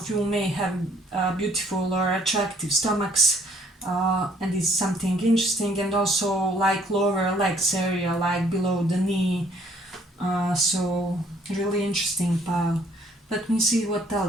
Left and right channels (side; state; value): both; normal; correlation 0.62